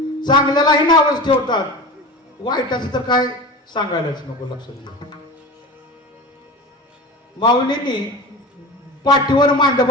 चांगल्यालाही नावच ठेवतात, वाईटाचं तर काय सांगायलाच नको. लक्षात घ्या, माऊलींनी पाठीवर मांड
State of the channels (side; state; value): both; normal; correlation 0.31